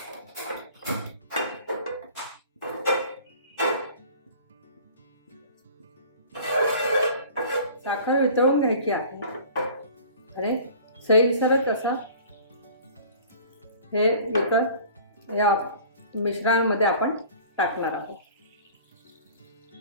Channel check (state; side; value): inverted; both; correlation -0.45